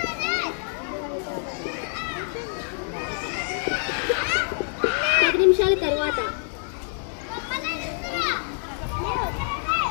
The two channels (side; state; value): right; silent; 61 dB below the other